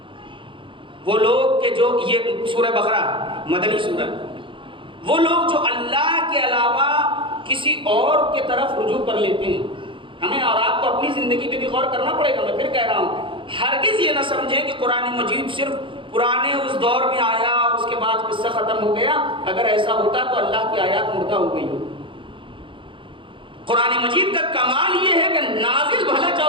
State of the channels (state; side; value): late; left; 0.25 ms